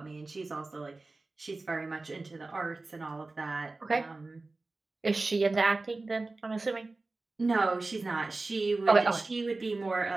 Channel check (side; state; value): left; quieter; 3.4 dB